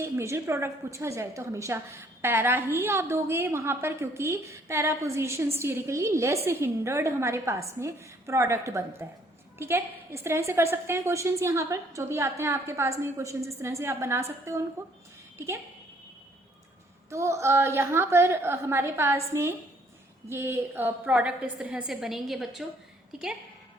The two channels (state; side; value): normal; both; correlation 0.63